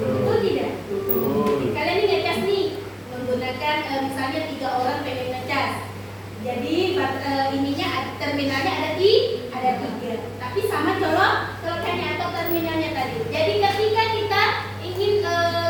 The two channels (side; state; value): both; identical; correlation 1.00